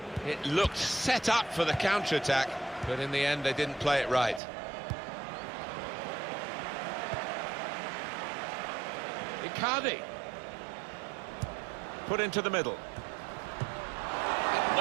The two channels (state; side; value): drops out; left; at 4.4 s